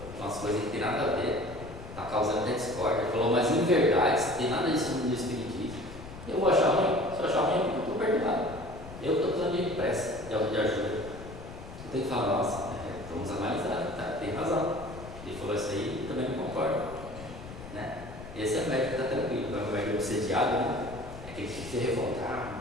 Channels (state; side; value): noise; left; rumble, 13 dB below the sound